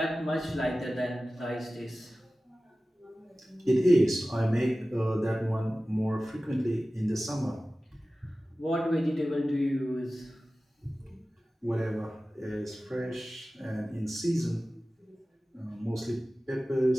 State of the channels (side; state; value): both; normal; correlation 0.96